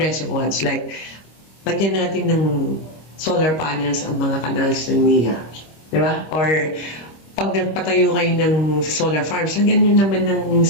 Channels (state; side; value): late; right; 25 ms